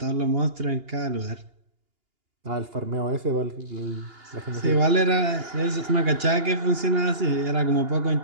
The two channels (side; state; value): left; late; 2.8 ms